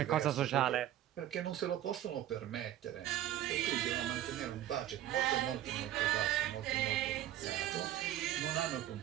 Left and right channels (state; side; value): quieter; left; 12.5 dB